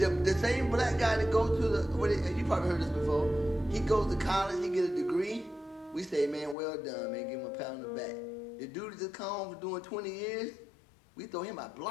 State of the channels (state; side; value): drops out; right; at 6.6 s